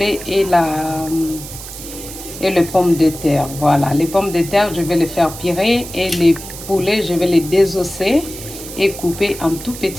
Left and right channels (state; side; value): noise; right; hiss, 12 dB below the sound